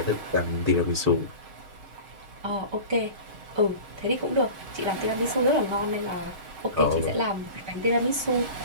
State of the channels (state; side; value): late; left; 6.5 ms